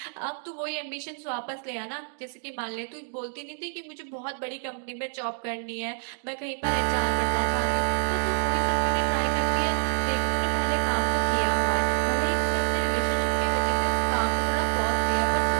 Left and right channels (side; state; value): left; silent; digital silence